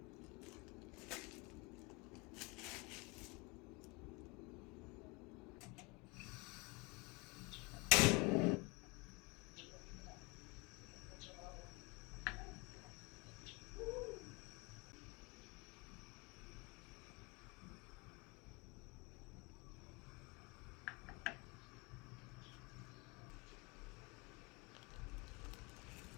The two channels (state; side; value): quieter; right; 27.6 dB